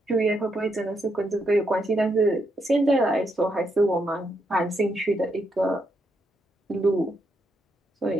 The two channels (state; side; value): normal; both; correlation 0.79